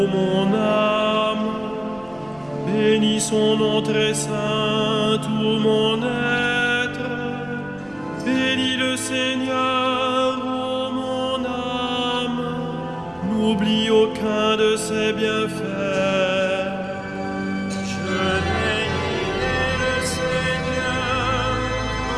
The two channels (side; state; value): right; noise; rumble, 26 dB below the sound